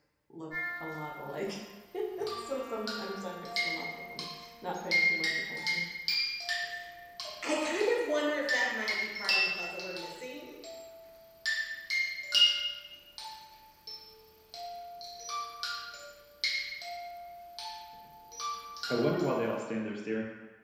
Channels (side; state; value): both; identical; correlation 1.00